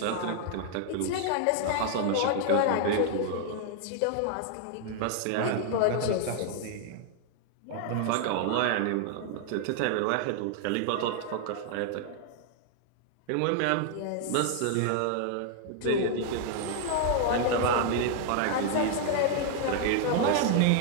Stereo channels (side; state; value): both; different; correlation 0.00